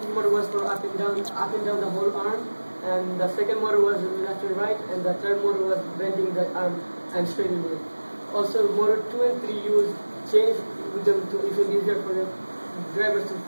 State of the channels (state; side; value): inverted; both; correlation -1.00